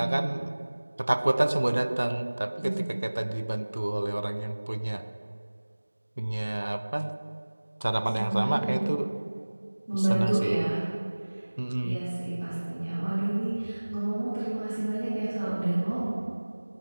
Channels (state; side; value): inverted; both; correlation -1.00